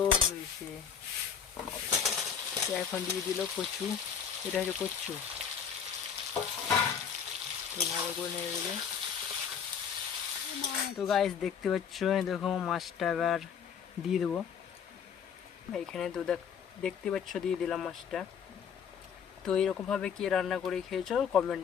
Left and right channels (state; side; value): quieter; right; 7.4 dB